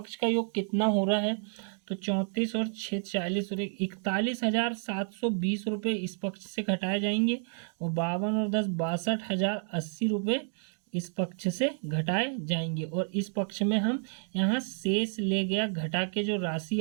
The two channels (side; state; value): left; silent; 58 dB below the other